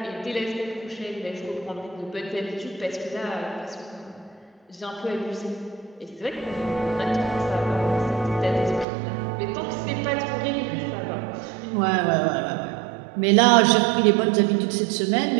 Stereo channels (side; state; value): left; drops out; at 8.8 s